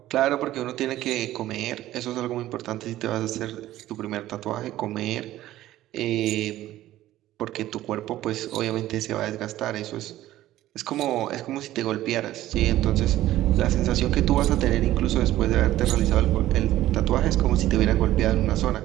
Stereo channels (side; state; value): left; quieter; 14.6 dB